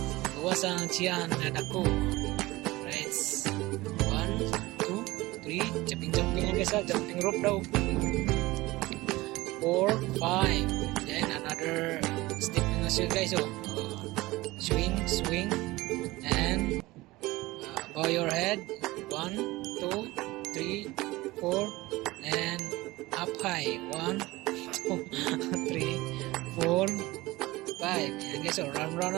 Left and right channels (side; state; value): left; quieter; 19.8 dB